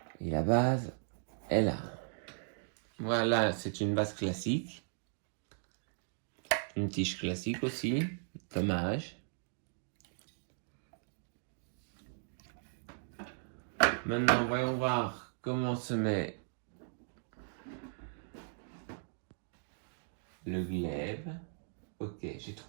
Et la base est là. Voilà, c'est une base classique. Une tige classique aussi. Dommage. Maintenant, voyons voir comment se met le glaive. Ok, j'ai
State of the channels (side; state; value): left; silent; digital silence